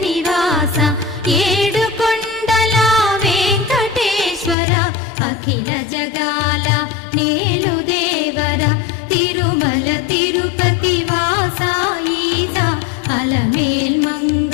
నివాస ఏడుకొండల వెంకటేశ్వర అఖిల జగాల నేలు దేవర తిరుమల తిరుపతి వాస ఈసా అలమేల్ మంగ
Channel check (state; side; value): drops out; right; at 4.5 s